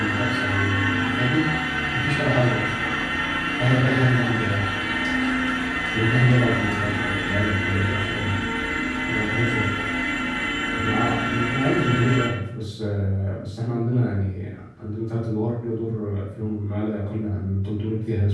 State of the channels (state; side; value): identical; both; correlation 1.00